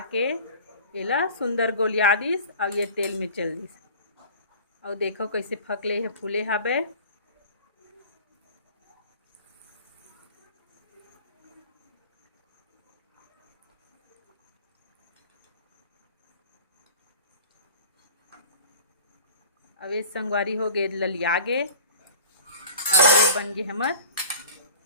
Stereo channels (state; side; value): inverted; both; correlation -0.39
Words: के एला सुंदर गोलिया दिस और ये तेल में चल दिस और देखो कैसे फकले है फूले हवे। अब ये संगवारी हो गए ललिया गे और ये बन गए हमर